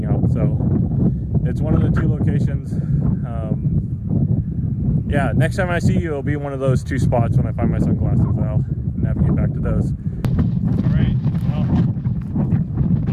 out. So it's one of the two locations. Yeah, next time I see you, it'll be one of those two spots when I find my sunglasses. I'll navigate back to those. All right, well,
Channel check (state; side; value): identical; both; correlation 1.00